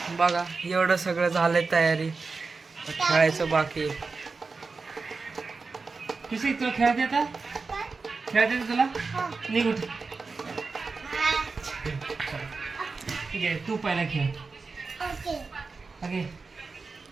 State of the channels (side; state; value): left; quieter; 4.3 dB